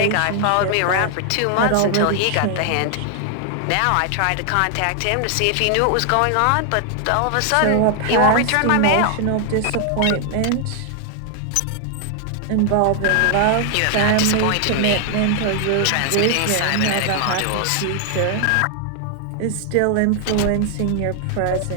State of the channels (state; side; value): different; both; correlation 0.00